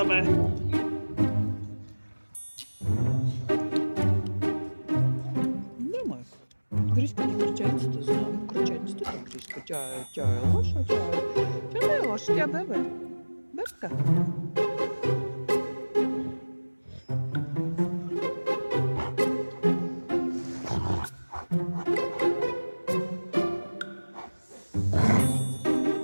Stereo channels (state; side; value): inverted; both; correlation -1.00